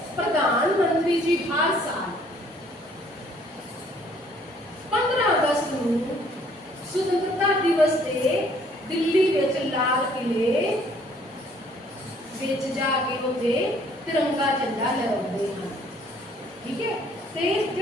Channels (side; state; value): both; normal; correlation 0.61